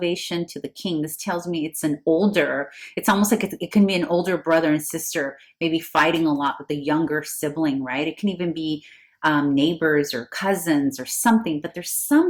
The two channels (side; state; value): both; identical; correlation 1.00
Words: to the king, this tells me it's it's almost like it can be an older brother and sister, maybe fighting a lot with a younger sibling, right? It can even be neighbors or cousins or something, but there's